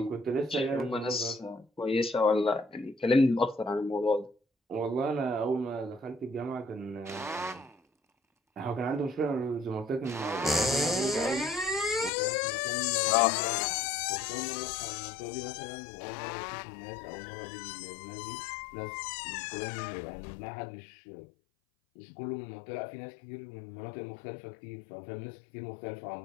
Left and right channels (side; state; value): right; drops out; at 12.1 s